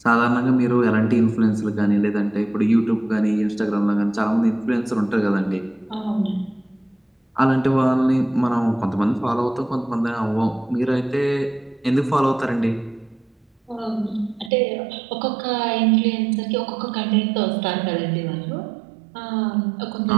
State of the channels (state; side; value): drops out; left; at 14.5 s